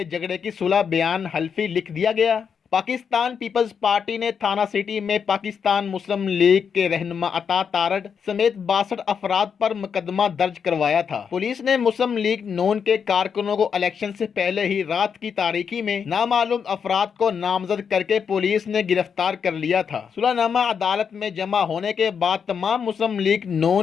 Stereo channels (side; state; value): right; quieter; 6.8 dB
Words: جھگڑے کی صلح بیان حلفی لکھ دیا گیا۔ پاکستان پیپلز پارٹی نے تھانہ سٹی میں پاکستان مسلم لیگ کے رہنما عطا تارڑ سمیت 62 افراد پر مقدمہ درج کروایا تھا۔ پولیس نے مسلم لیگ نون کے کارکنوں کو الیکشن سے پہلے ہی رات کی تاریکی میں نامعلوم افراد کو نامزد کر کے پولیس نے گرفتار کر لیا تھا۔ صلح نامہ عدالت میں جمع ہونے کے بعد تمام مسلم لیگ